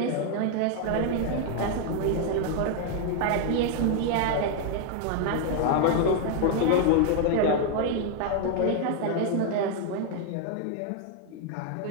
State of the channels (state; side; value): different; both; correlation 0.00